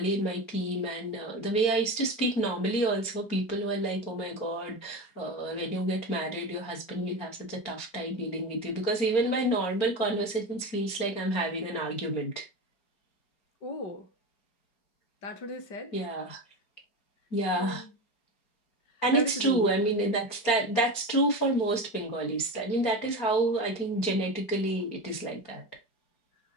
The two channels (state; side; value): late; right; 4.4 ms